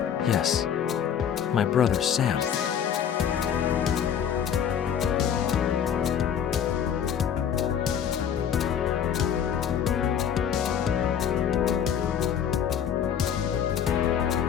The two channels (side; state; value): right; quieter; 8.5 dB